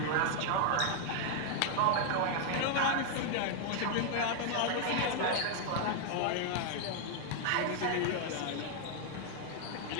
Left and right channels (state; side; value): different; both; correlation 0.00